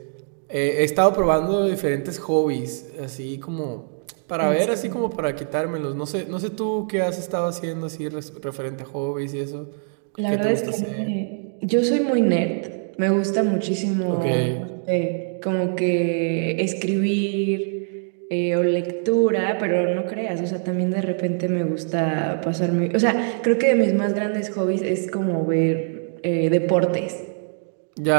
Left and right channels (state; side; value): silent; left; digital silence